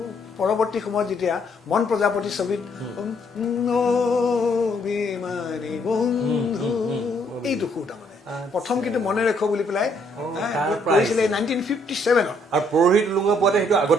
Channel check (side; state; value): both; normal; correlation 0.69